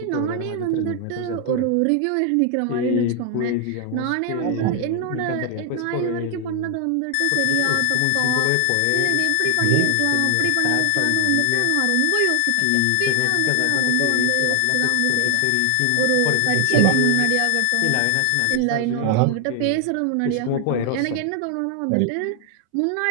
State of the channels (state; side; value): different; both; correlation 0.00